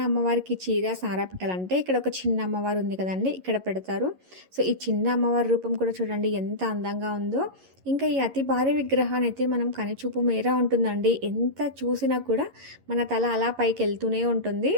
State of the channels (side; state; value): left; late; 11 ms